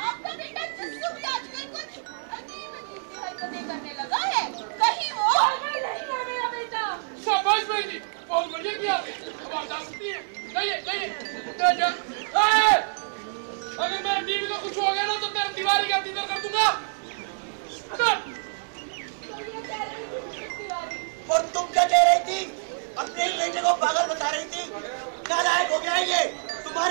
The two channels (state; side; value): silent; left; digital silence